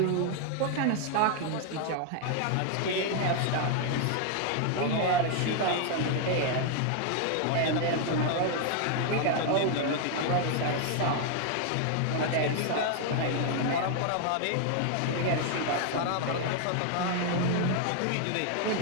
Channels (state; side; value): different; both; correlation 0.01